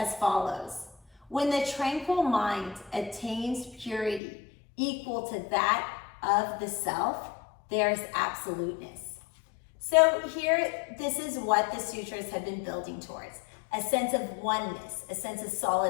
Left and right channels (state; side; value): drops out; right; at 4.2 s